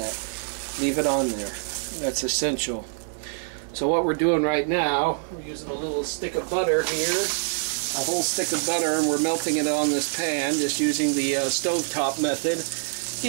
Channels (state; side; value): silent; left; digital silence